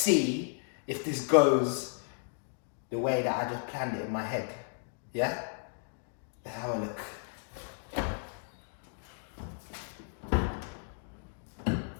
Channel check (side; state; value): right; silent; digital silence